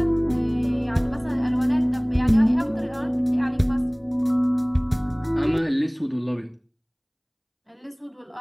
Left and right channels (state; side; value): identical; both; correlation 1.00